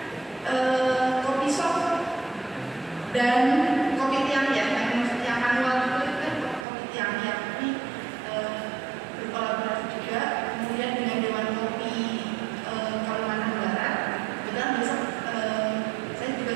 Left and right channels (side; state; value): left; drops out; at 6.7 s